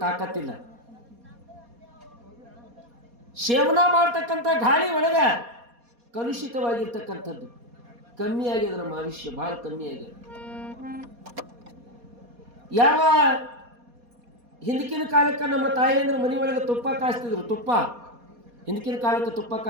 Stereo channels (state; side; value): late; left; 4.2 ms